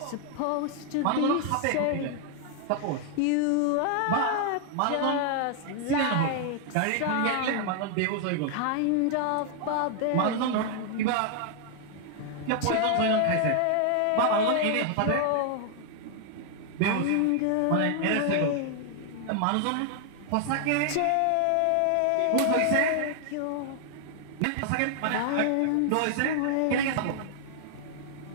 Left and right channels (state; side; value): different; both; correlation 0.00